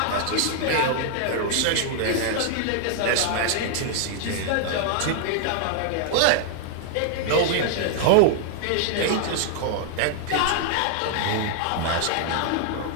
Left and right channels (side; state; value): both; different; correlation -0.01